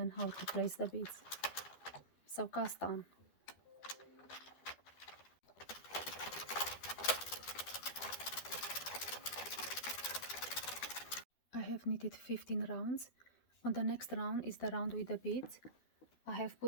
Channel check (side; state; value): right; late; 12 ms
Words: how to place the beads. So cast on. I have knitted 15 rounds. On the next round is the round with the beads. I have